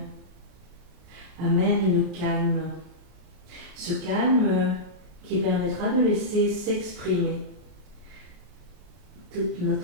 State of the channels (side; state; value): left; late; 32 ms